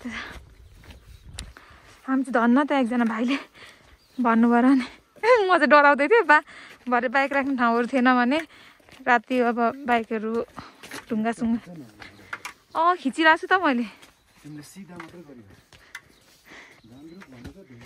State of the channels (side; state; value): both; identical; correlation 1.00